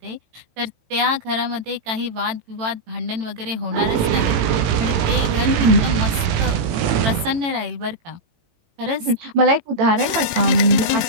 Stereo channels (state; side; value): late; left; 18 ms